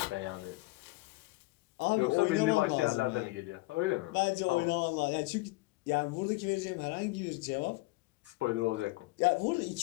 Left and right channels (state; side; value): quieter; right; 22.5 dB